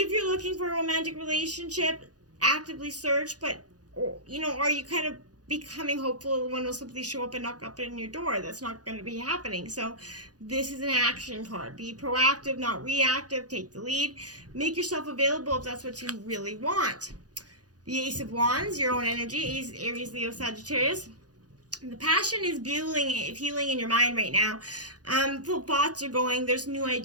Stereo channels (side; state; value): left; late; 0.68 ms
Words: you're looking for a romantic relationship, actively search, but, are you kind of becoming hopeful one will simply show up and knock up in your door? That's not going to be happening. So this is an action card. Be proactive, not reactive. Take the lead. Make yourself available if that's what you really want. The Ace of Wands, your own energy, Aries, Leo, Sagittarius. The passion is fueling in your mind right now. The thoughts are going. There's new